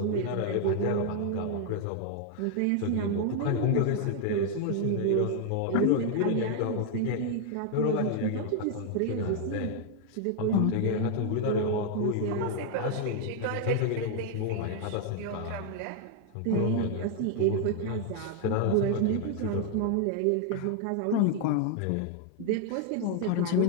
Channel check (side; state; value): both; different; correlation 0.00